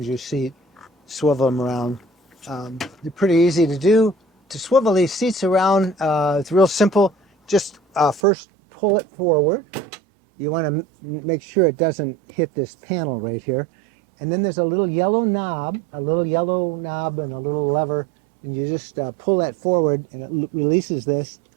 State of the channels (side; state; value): left; drops out; at 8.2 s